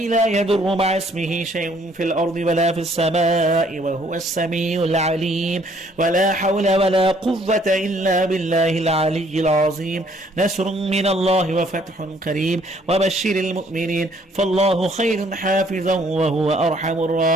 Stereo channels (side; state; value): both; normal; correlation 0.63